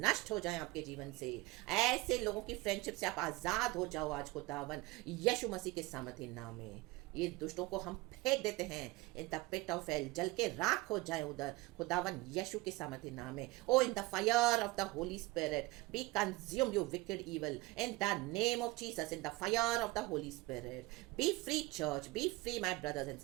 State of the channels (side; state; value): left; quieter; 21.0 dB